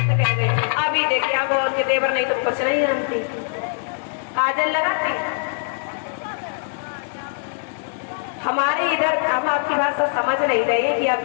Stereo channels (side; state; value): right; silent; digital silence